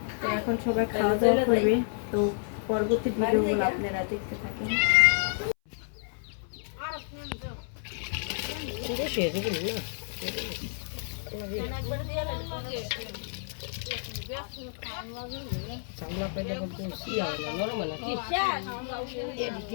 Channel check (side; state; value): right; silent; 58 dB below the other